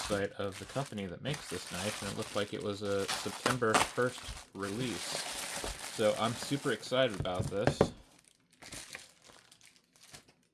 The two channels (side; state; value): both; identical; correlation 1.00